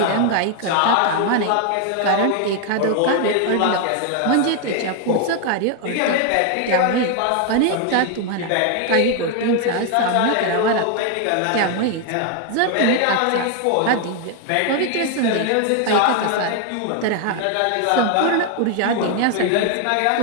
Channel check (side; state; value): both; different; correlation 0.00